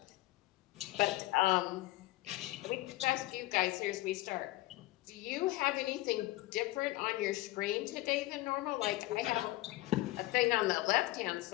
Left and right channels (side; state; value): right; quieter; 18.5 dB